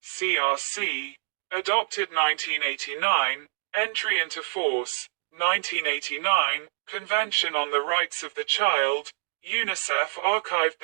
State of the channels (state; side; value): silent; left; digital silence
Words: CRC, adopted 1989, entry into force, 1989, Convention on the Rights of the Child, UNICEF archived